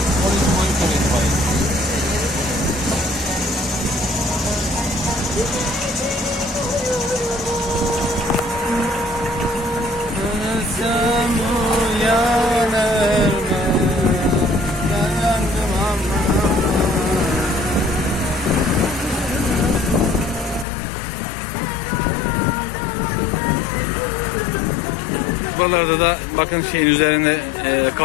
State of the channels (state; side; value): drops out; right; at 20.7 s